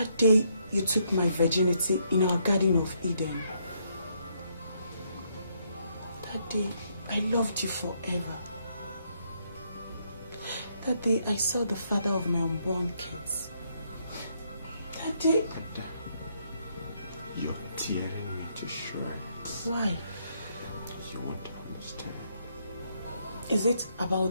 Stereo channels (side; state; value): both; inverted; correlation -0.73